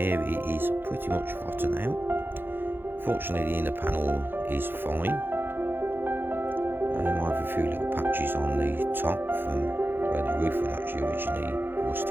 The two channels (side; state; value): left; late; 0.10 ms